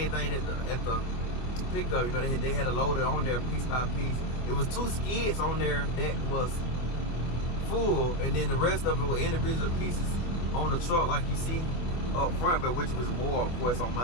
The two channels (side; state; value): right; late; 24 ms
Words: thing at the pickup. They had a loader on there piece by piece. It was 2 skids on there that was full, and then the rest of it were individual pieces on the truck, like you see up front, but which was more, of course, on